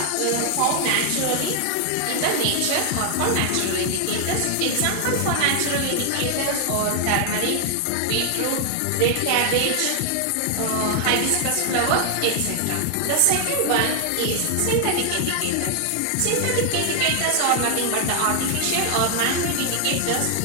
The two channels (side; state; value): both; different; correlation 0.00